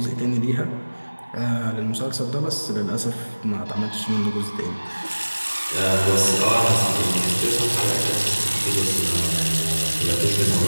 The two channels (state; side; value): inverted; both; correlation -1.00